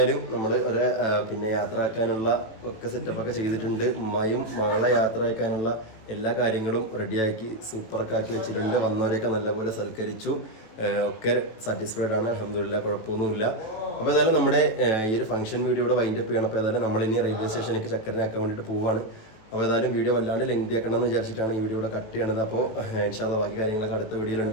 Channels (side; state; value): right; late; 18 ms